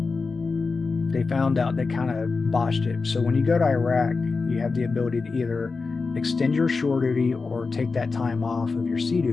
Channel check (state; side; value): quieter; right; 4.3 dB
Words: they found out they kind of botched it. So when you go to Iraq, you have the ability to either extend your shore duty or take that time off of your sea